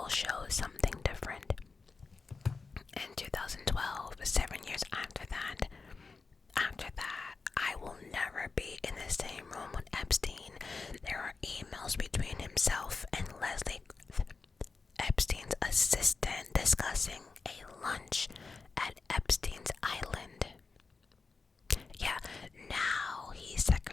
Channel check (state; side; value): quieter; right; 4.4 dB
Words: shows something different. In 2012, 7 years after that, I will never be in the same room with Epstein. There are emails between himself and Leslie, Epstein's assistant, discussing a lunch at Epstein's Island. Yeah, now he's